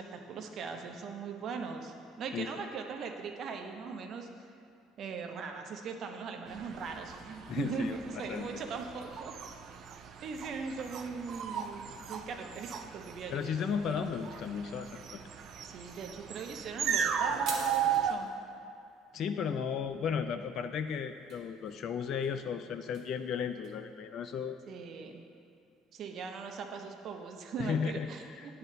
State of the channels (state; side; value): normal; both; correlation 0.53